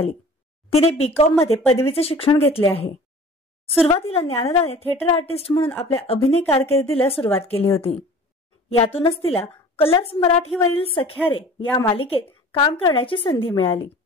तिने बीकॉम मध्ये पदवीचे शिक्षण घेतले आहे। सुरुवातीला ज्ञानदाने थिएटर आर्टिस्ट म्हणून आपल्या अभिनय कारकिर्दीला सुरुवात केली होती। यातूनच तिला कलर्स मराठीवरील सख्यारे या मालिकेत काम करण्याची संधी मिळाली।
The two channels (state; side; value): normal; both; correlation 0.44